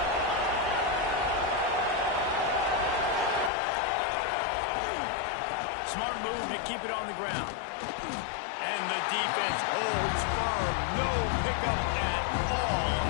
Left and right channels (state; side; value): drops out; right; at 3.5 s